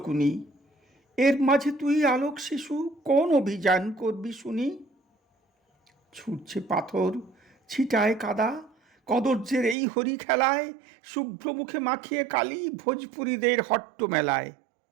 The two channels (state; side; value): drops out; left; at 9.8 s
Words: এর মাঝে তুই আলোক শিশু কোন অভিযান করবি শুনি? ছুটছে পাথর, ছিটায় কাদা, কদর্যের এই হরি খেলায়, শুভ্র মুখে মাখিয়ে কালি ভোজপুরীদের হট্ট মেলায়।